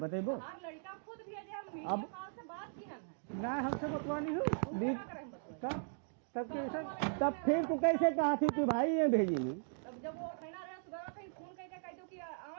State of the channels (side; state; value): left; silent; digital silence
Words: हर लड़का खुद भेजे, हम वीडियो अब- कॉल से बात की है। ना हमसे बतवानी हो क्या करें बतवाई? तब कैसे तब फिर तू कैसे कहा थी कि भाई ये भेजी नहीं? तब जब वो कहना रहे सुबह कहीं फोन करके कह दो कि